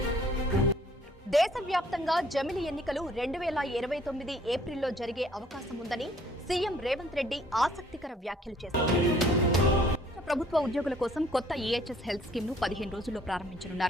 దేశవ్యాప్తంగా జమిలి ఎన్నికలు 2029 ఏప్రిల్లో జరిగే అవకాశం ఉందని సీఎం రేవంత్ రెడ్డి ఆసక్తికర వ్యాఖ్యలు చేశారు. ప్రభుత్వ ఉద్యోగుల కోసం కొత్త ఈహెచ్ఎస్ హెల్త్ స్కీమ్ ను 15 రోజుల్లో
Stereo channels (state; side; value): normal; both; correlation 0.60